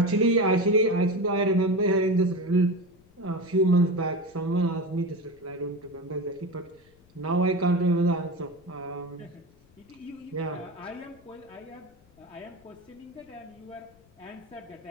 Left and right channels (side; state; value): left; noise; rumble, 29 dB below the sound